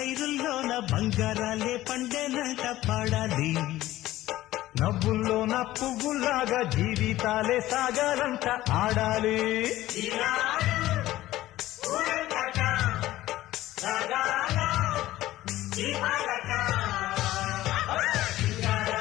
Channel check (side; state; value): right; quieter; 15.5 dB